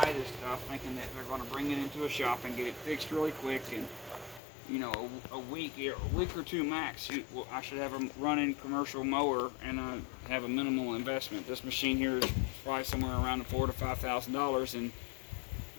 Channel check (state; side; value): drops out; right; at 4.4 s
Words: this stuff thinking that they're going to bring it into a shop and get it fixed really quick, and you know, a week or two max, I should have a running commercial mower and have a minimal investment. This machine here is probably somewhere around $4,000 to $5,000 and